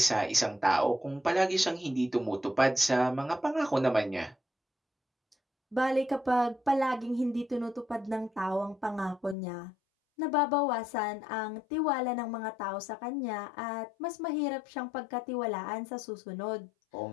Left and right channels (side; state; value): right; drops out; at 9.3 s